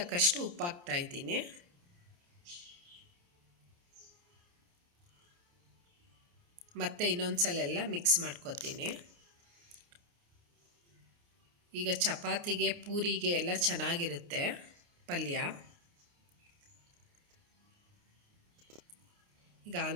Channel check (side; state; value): left; late; 29 ms